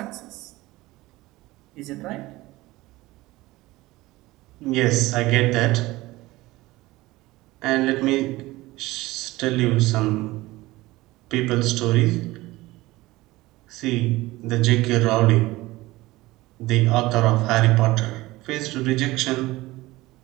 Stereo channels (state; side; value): quieter; left; 19.2 dB